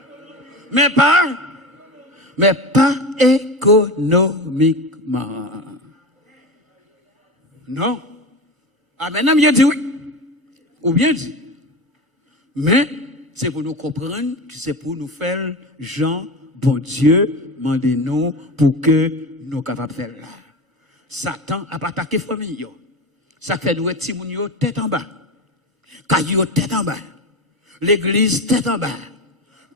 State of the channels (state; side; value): normal; both; correlation 0.25